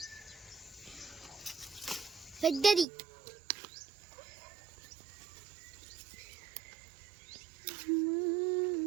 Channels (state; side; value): drops out; left; at 2.9 s